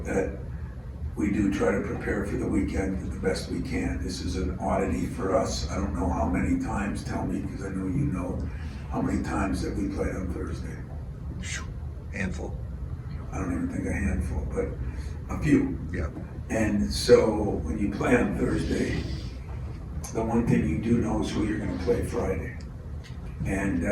that we do try to prepare for the weekend the best we can. This is an oddity for us. I don't know how many times, tell me, because I know you know, how many times that we played on Thursday. Handful. I don't even think a handful, but a few. Yeah. And so when you play on Thursday, the one thing you do know is who you're gonna play Friday. And,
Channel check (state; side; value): identical; both; correlation 1.00